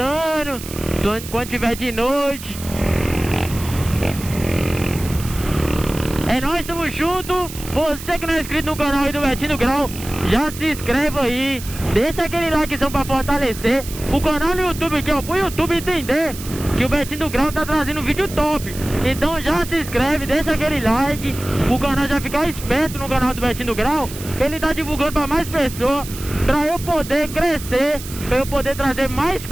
quando tiver de noite. É nóis, tamo junto. Você que não é inscrito no canal aí do Betinho do Grau, já se inscreve aí. Deixa aquele likezão pra fortalecer o canal no YouTube aqui, ó, pro YouTube entender que o Betinho do Grau tá trazendo vídeo top. Então já se inscreve, deixa aquele like, o canal já ficar esperto no canal do Betinho do Grau. Ele tá divulgando pra mais pessoas, pra eu poder crescer, pra eu poder trazer mais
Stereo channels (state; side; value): noise; right; hiss, 12 dB below the sound